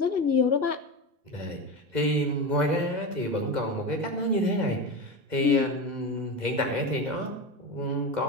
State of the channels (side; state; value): left; late; 2.0 ms